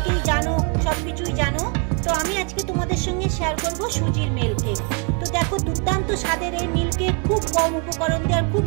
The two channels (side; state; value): left; quieter; 36.8 dB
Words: জানো, সব কিছুই জানো। তো আমি আজকে তোমাদের সঙ্গে শেয়ার করব সুজির মিল্ক কেক। তো দেখো, দুর্দান্ত স্বাদের এই মিল্ক কেক খুব কম উপকরণ দিয়ে আর খুব